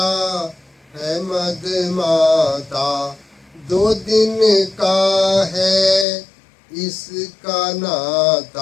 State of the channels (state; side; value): drops out; right; at 6.1 s